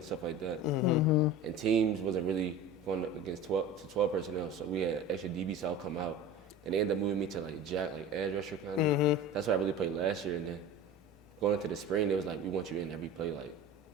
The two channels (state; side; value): normal; both; correlation 0.36